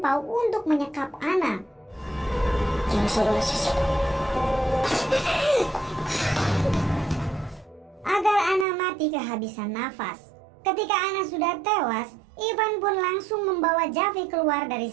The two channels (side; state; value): left; drops out; at 8.7 s